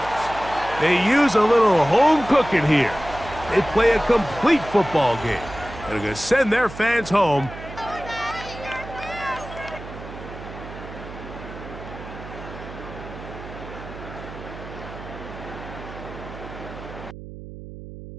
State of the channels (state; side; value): noise; right; hum, 13 dB below the sound